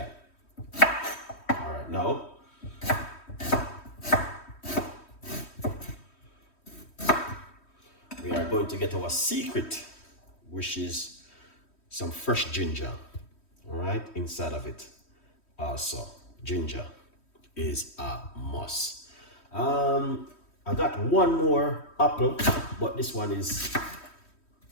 All right, now we are going to get our secret, which is some fresh ginger. All right, inside of it. Also, ginger is a must. I got 1 more apple, but this one is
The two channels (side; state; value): right; late; 3.1 ms